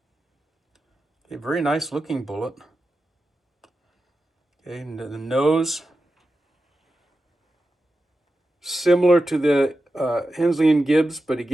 A very nice looking bullet. Okay, and the nose, similar to the Hensley Gibbs, but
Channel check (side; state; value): both; normal; correlation 0.91